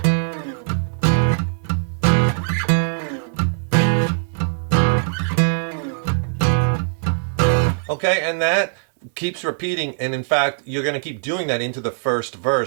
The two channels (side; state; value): left; silent; digital silence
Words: Okay, and that keeps repeating, and in fact, you're going to keep doing that into the first